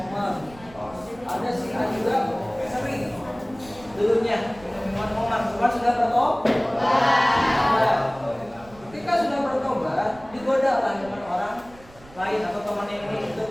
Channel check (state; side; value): noise; right; rumble, 22 dB below the sound